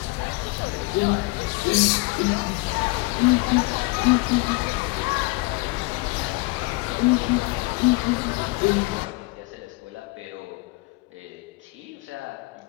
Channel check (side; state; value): right; quieter; 24.0 dB